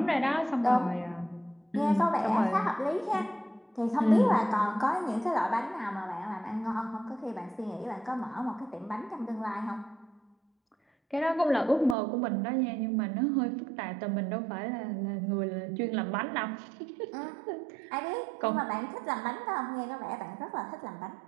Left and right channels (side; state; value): left; drops out; at 12.0 s